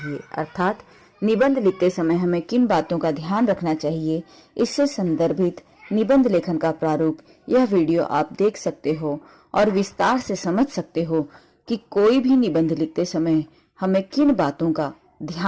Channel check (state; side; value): identical; both; correlation 1.00